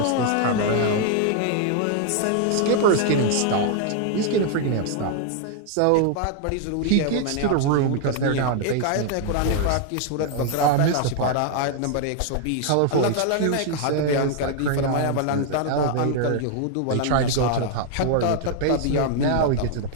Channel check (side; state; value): both; different; correlation 0.00